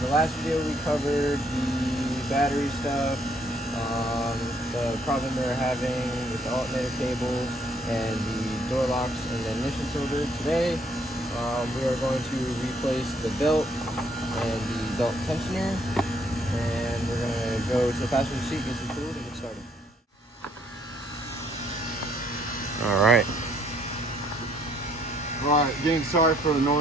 the last video we covered the battery stuff, the problem they were having with the alternator cable and the door locks and the ignition cylinder. Today we are going to replace the belt and the belt tensioner, and we're going to go to the passenger seat, get some food, and get started. Alright, again, sorry for the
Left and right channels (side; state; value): both; normal; correlation 0.67